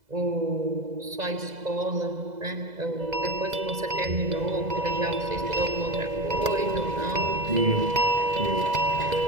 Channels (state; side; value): late; left; 2.0 ms